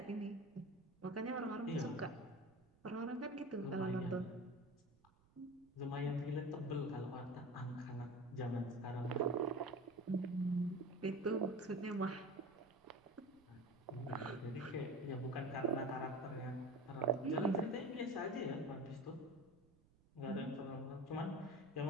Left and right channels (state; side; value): noise; right; rumble, 29 dB below the sound